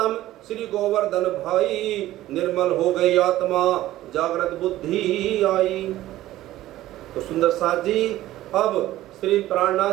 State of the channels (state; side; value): quieter; left; 15.0 dB